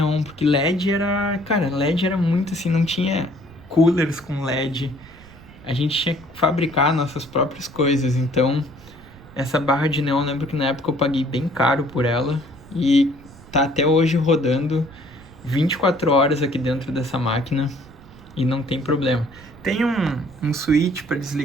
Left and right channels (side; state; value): right; noise; rumble, 21 dB below the sound